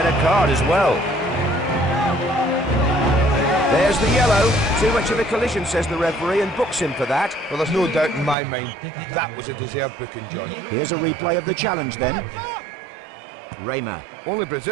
a card as well. There's the yellow. Too much of a collision, says the referee, and books him for that. Well, there's no doubt in my mind that was a deserved booking, John. Here's a replay of the challenge then. Raymer. Only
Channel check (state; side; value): drops out; left; at 8.3 s